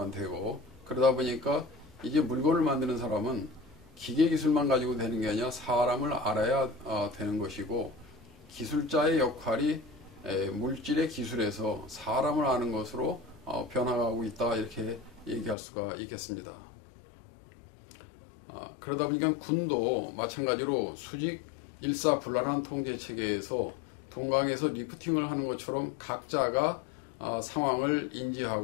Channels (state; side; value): drops out; right; at 15.6 s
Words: 되고, 그러다 보니까 이제 물건을 만드는 사람은 기계 기술만 가지고 되는 게 아니라 사람을 알아야 되는 것이고, 기술자의 역할이 물질의 기술에서 사람을 아는 것으로 변화하고 있다, 이렇게 얘기할 수가 있겠습니다. 그러다 보니까 군도 마찬가지로 수직 일사불란한 통제 체계에서 동강에서 리프팅을 하는 것처럼 각자가 상황을